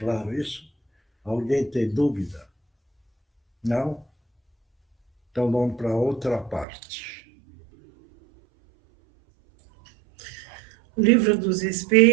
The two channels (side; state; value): left; drops out; at 6.7 s